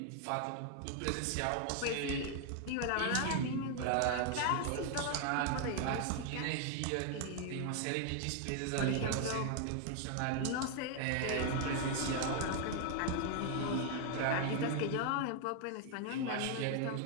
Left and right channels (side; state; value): both; different; correlation 0.00